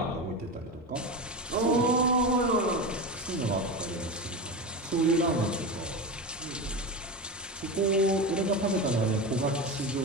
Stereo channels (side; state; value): both; normal; correlation 0.21